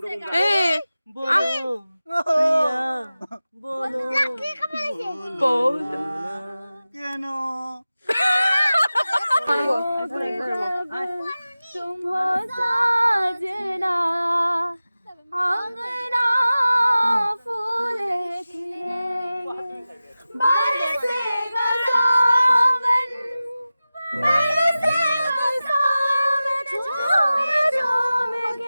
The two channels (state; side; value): inverted; both; correlation -0.96